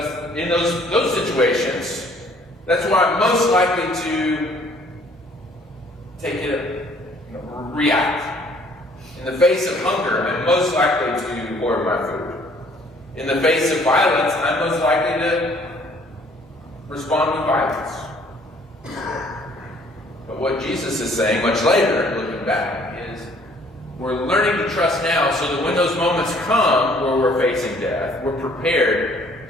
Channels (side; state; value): both; normal; correlation 0.59